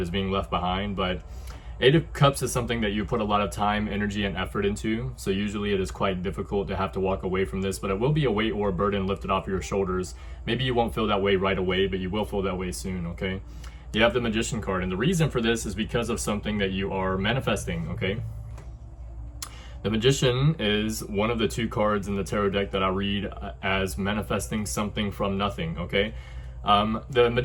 is being left behind. But 8 of Cups is something that you put a lot of time, energy, and effort into. So usually it is quite difficult to have to walk away from this, but it will be a weight or a burden lifted off your shoulders. Maybe you won't feel that way right away, but you will feel that way soon, okay? You have the Magician card, and the reason for this is because of something that you are manifesting, okay? The Magician is one of the 2 cards in the tarot deck that I read as manifesting something from nothing, okay? The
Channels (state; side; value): identical; both; correlation 1.00